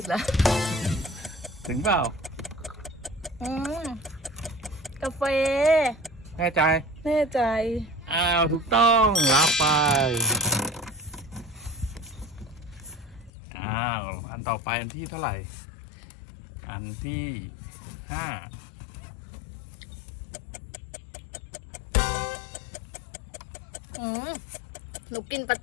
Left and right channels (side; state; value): right; drops out; at 13.3 s